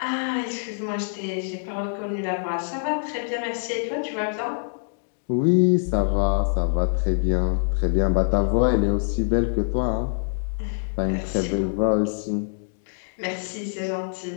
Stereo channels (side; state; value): right; silent; digital silence